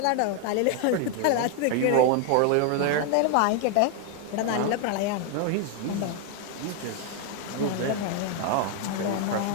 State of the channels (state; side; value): different; both; correlation 0.01